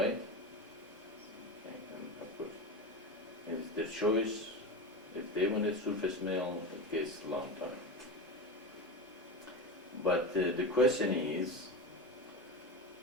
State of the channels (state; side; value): normal; both; correlation 0.23